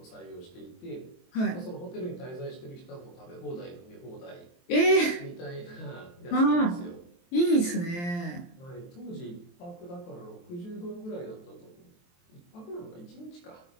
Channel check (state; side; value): late; right; 23 ms